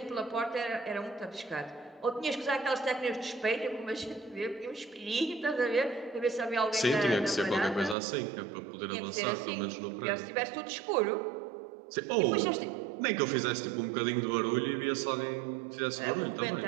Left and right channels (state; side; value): drops out; left; at 8.0 s